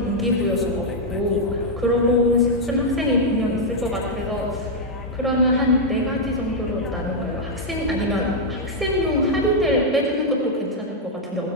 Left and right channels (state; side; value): normal; both; correlation -0.02